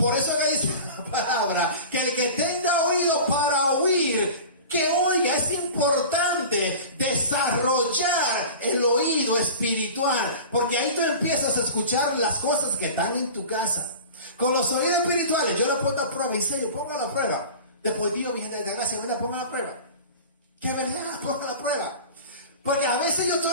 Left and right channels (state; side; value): inverted; both; correlation -0.36